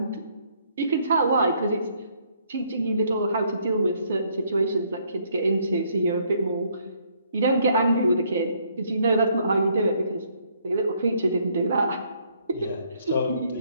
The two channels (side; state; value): both; inverted; correlation -0.68